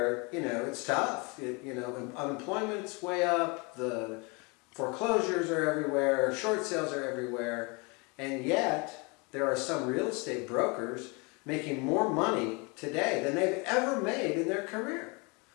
it's tough. Unemployment's way up, the foreclosures are everywhere, short sales are everywhere, and yet there are some real estate brokers making more money today than they've ever made in their career.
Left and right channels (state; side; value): quieter; right; 29.7 dB